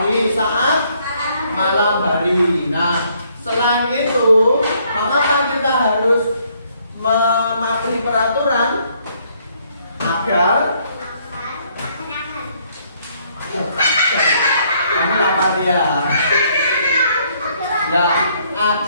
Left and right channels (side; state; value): both; inverted; correlation -0.68